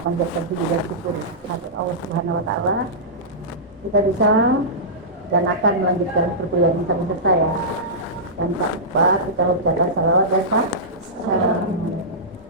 panjatkan puji dan syukur kepada Allah Subhanahu Wa Taala. Kita bisa dan akan melanjutkan perkuliahan bersama saya. Dan tak lupa kita ucapkan salawat dan salam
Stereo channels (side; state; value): both; normal; correlation -0.15